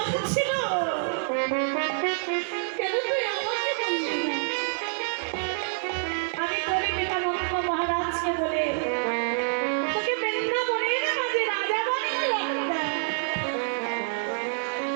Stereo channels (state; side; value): silent; left; digital silence